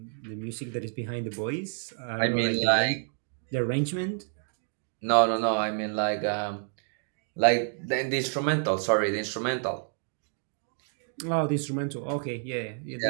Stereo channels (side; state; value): left; silent; 57 dB below the other